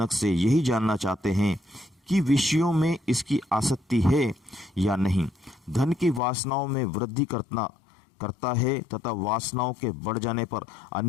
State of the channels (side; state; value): right; drops out; at 6.2 s